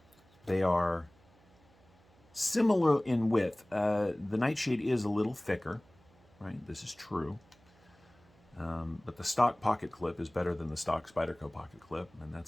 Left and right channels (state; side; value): noise; right; hum, 29 dB below the sound